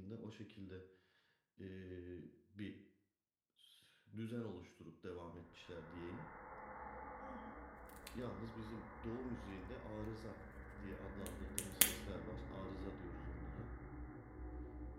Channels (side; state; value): both; identical; correlation 1.00